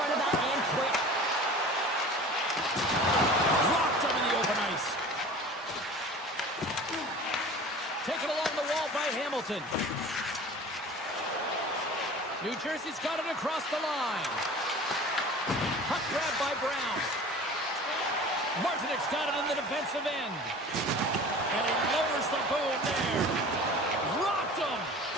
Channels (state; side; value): normal; both; correlation 0.41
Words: of that and quick. Blocked him in the open ice. Taken along the wall by Hamilton. New Jersey's got it across the line. Puck grab by Brown. Martinek's got it in the defensive end. And he lowers the boom there. Rocked him.